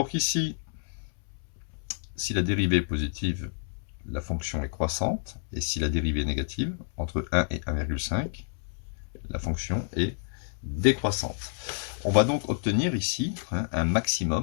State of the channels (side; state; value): right; silent; 59 dB below the other